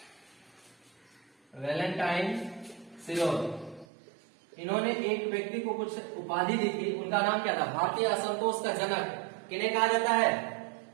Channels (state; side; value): drops out; left; at 3.9 s